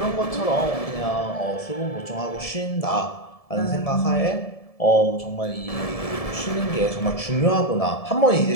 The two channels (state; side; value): late; right; 1.7 ms